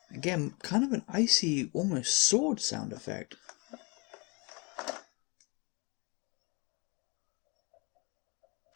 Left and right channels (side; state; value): right; quieter; 30.0 dB